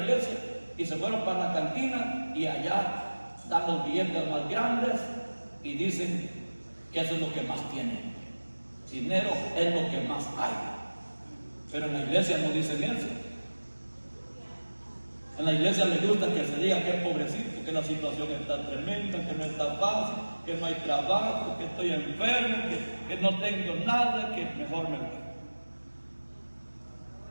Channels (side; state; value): both; inverted; correlation -1.00